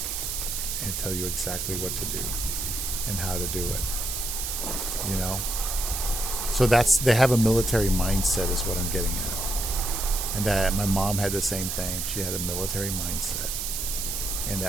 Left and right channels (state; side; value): noise; right; hiss, 3 dB below the sound